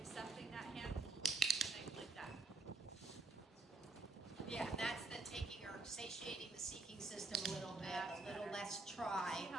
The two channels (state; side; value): quieter; left; 3.6 dB